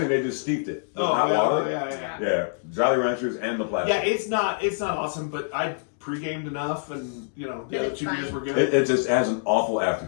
they just steeped it with hot yeah, water. yeah. Yeah, Jolly Ranchers and the plastic. Yeah, it's not awesome, but I pre-gamed enough, and the other It's 2 fine. beers were good. It just has an awful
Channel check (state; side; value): silent; right; 61 dB below the other